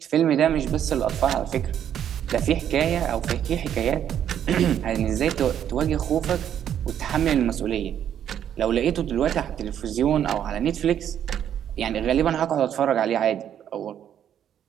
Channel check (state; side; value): quieter; left; 9.7 dB